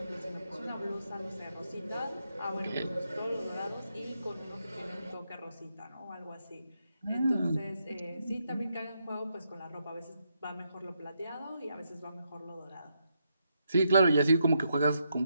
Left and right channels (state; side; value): inverted; both; correlation -0.80